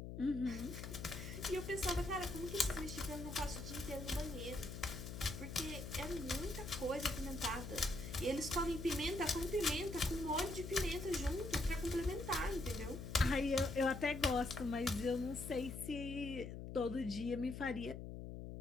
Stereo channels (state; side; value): noise; left; hum, 8 dB below the sound